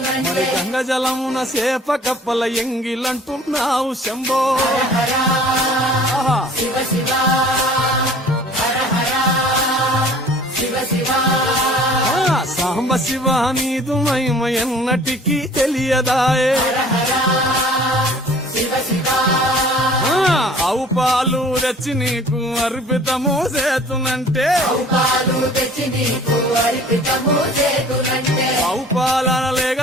మరి గంగ జలమున సేప కప్పల ఎంగిలంటున్నావు శంభో హర శివ శివ హర హర శివ శివ సాంబ శివ నీదు మహిమ ఎన్నటికీ తెలియదాయే శివ శివ ఆవు పాలు తెచ్చి నీకు అర్పితము చేతునంటే పాలు తెచ్చి నీకు అర్పితము చేతునంటే ఆవు పాలన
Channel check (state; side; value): normal; both; correlation 0.50